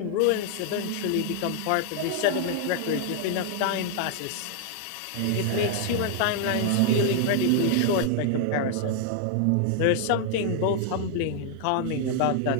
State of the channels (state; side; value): different; both; correlation 0.00